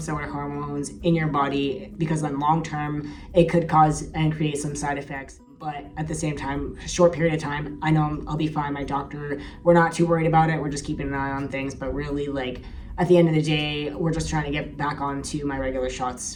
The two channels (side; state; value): both; identical; correlation 1.00